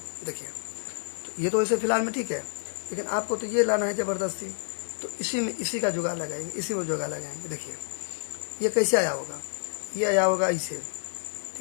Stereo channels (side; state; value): right; silent; digital silence